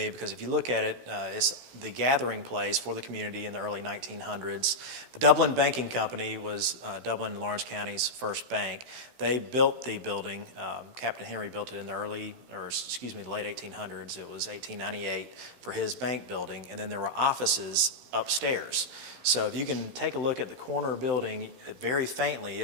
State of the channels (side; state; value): left; late; 16 ms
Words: because if you look at it, it's the gathering place for the community in the early 1900s. The Dublin Banking Company was Dublin and Lawrence County's first bank. They built the building. Captain Henry built it in the late 1800s. It was 1898 for his bank building, and then there were offices upstairs. So if you can take a look at the corner building, very faintly